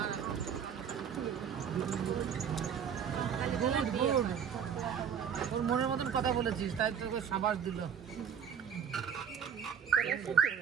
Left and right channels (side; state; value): left; quieter; 7.6 dB